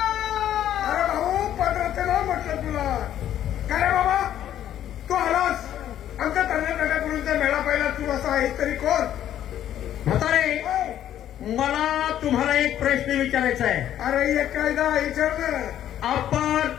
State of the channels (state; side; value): quieter; right; 11.2 dB